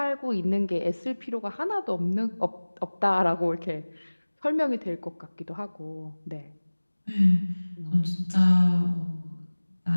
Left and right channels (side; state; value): both; inverted; correlation -1.00